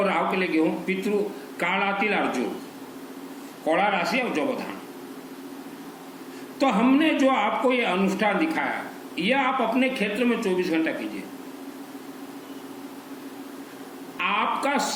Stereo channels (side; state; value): both; identical; correlation 1.00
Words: राहु के लिए गेहूं, पितृ काला तिल और जौ, कौड़ा राशि और जौबधान। तो हमने जो आपको ये अनुष्ठान दिखाया, यह आप अपने क्षेत्र में 24 घंटा कीजिए। आपका